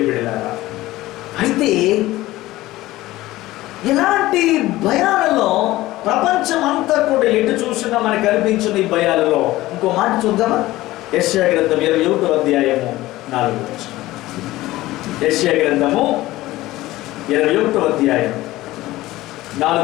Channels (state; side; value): quieter; right; 17.3 dB